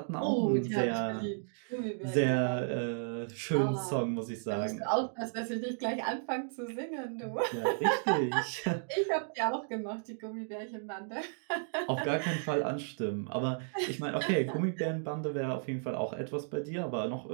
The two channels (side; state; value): left; silent; digital silence